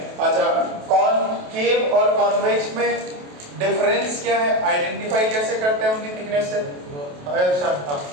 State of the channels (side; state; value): left; late; 28 ms